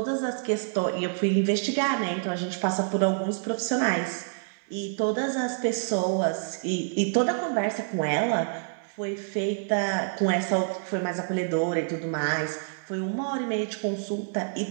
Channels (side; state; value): left; silent; digital silence